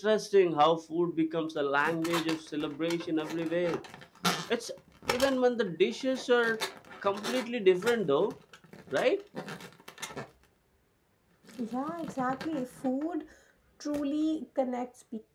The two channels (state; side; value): identical; both; correlation 1.00